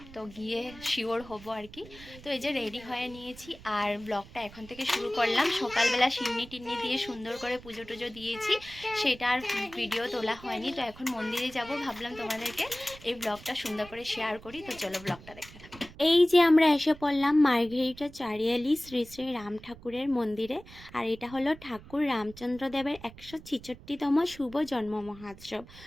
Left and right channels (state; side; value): noise; right; rumble, 19 dB below the sound